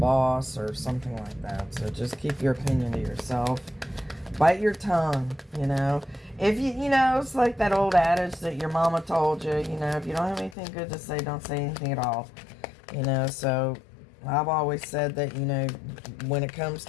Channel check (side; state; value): right; drops out; at 10.6 s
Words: or something like that. So just keep your opinion to yourself. Bite your tongue, If it's like that old adage that your mama told you, if you don't have anything good to say, don't say anything at all. So I've always said that, when it comes